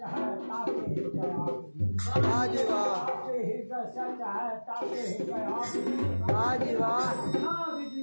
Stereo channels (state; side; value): inverted; both; correlation -1.00